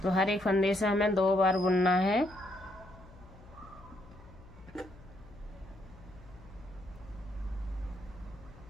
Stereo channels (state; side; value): noise; left; hum, 21 dB below the sound